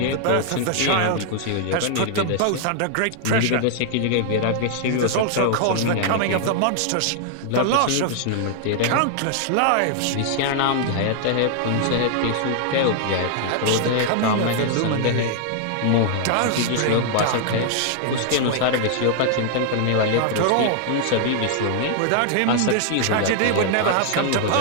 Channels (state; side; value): different; both; correlation -0.01